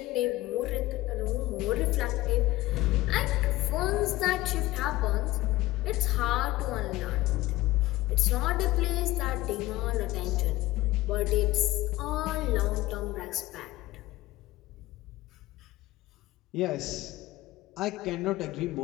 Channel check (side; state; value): right; quieter; 17.6 dB